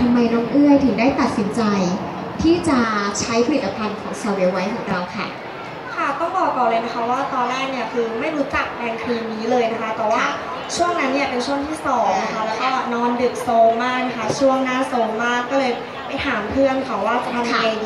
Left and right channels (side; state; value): both; identical; correlation 1.00